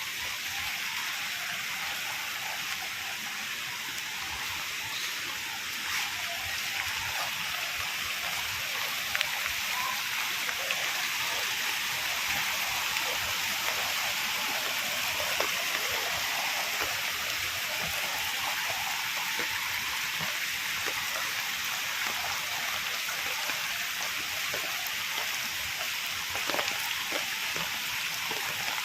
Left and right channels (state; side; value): identical; both; correlation 1.00